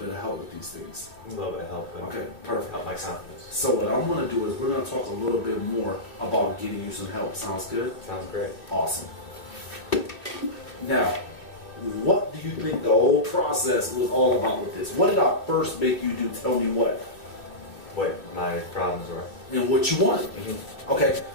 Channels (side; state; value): right; late; 2.8 ms